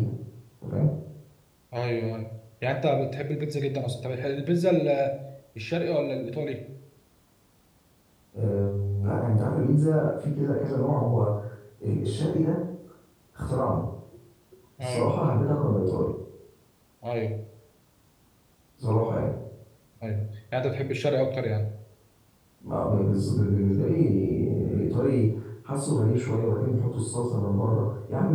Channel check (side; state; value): both; identical; correlation 1.00